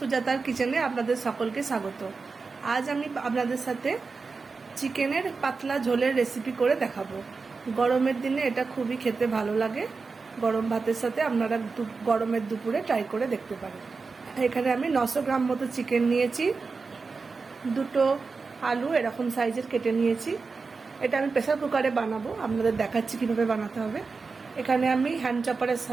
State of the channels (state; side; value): quieter; left; 4.5 dB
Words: কিচেনে আপনাদের সকলকে স্বাগত। আজ আমি আপনাদের সাথে চিকেনের পাতলা ঝোলের রেসিপি করে দেখাবো। গরমের দিনে এটা খুবই খেতে ভালো লাগে। গরম ভাতের সাথে আপনারা গরমের দুপুরে ট্রাই করে দেখতে পারেন। এখানে আমি 900 গ্রাম মতো চিকেন নিয়েছি, দুটো আলু এরকম সাইজের কেটে নিয়েছি। এটা আমি প্রেসার কুকারে বানাবো, আপনাদের দেখাচ্ছি কীভাবে বানাতে হবে। এখানে আমি হ্যান্ড চপারের